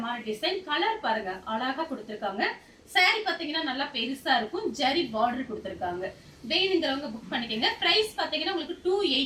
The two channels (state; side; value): identical; both; correlation 1.00